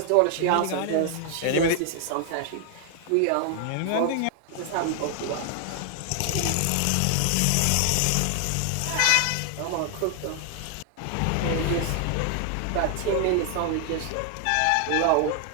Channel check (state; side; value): different; both; correlation 0.00